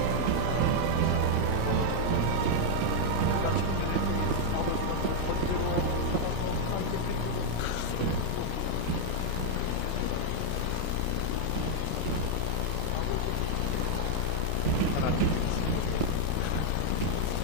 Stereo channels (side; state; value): both; different; correlation -0.01